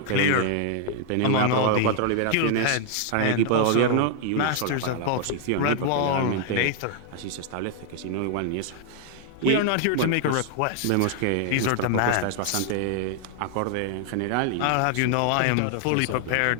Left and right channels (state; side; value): different; both; correlation 0.00